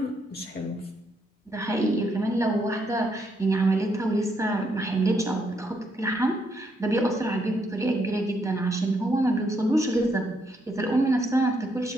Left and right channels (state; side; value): normal; both; correlation 0.75